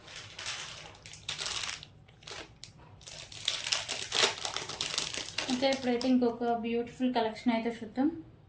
ఓకే, ఇప్పుడైతే ఇంకొక బ్యూటిఫుల్ కలెక్షన్ అయితే చూద్దాం.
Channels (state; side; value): identical; both; correlation 1.00